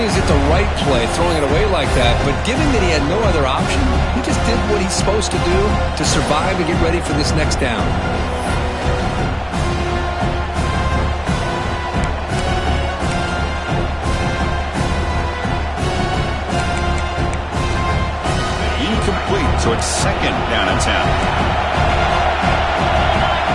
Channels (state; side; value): identical; both; correlation 1.00